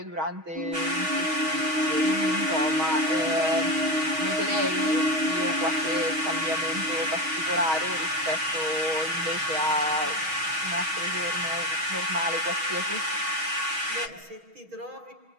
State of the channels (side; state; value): left; late; 6.3 ms